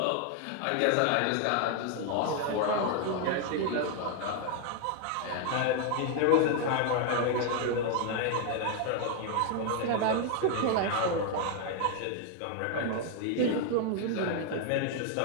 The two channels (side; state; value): both; different; correlation 0.00